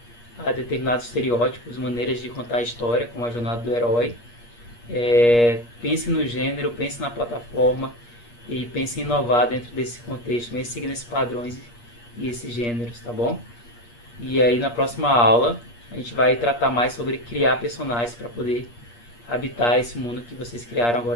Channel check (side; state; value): right; late; 8.5 ms